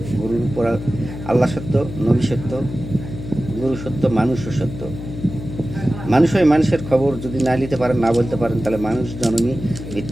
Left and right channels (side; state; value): left; noise; hum, 10 dB below the sound